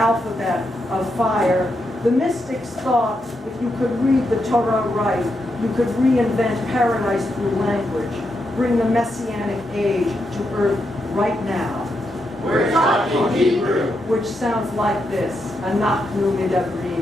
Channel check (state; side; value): normal; both; correlation 0.83